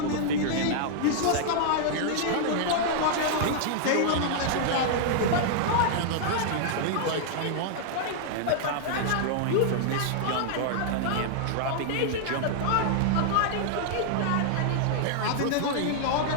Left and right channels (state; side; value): different; both; correlation -0.01